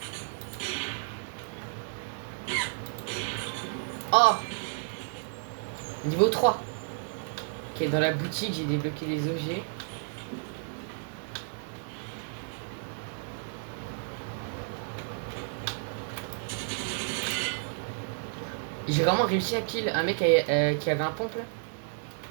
Oh, niveau 3. Ok, dans la boutique, j'ai débloqué des objets. J'ai vraiment réussi à kill un mec qui avait un pompe là.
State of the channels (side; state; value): left; silent; digital silence